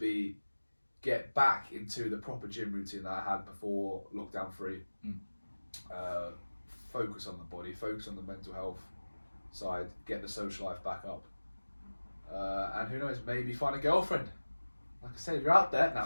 get back into the proper gym routine that I had before lockdown 3. Focus on the body, focus on the mental health side, get the social life back up. And who knows, maybe find a girlfriend. Like I said, if you're out there, no,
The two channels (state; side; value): inverted; both; correlation -1.00